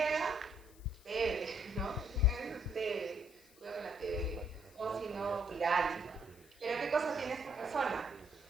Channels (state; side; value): noise; left; hiss, 26 dB below the sound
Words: TB, ¿no? TB, cuidado con la TB. O si no, viral. Pero ¿qué cosa tiene esta persona?